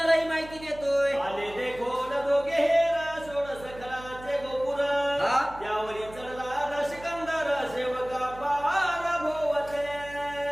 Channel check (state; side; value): noise; right; hum, 17 dB below the sound